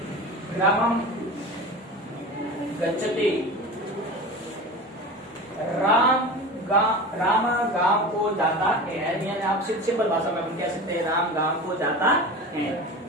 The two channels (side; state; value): both; normal; correlation 0.32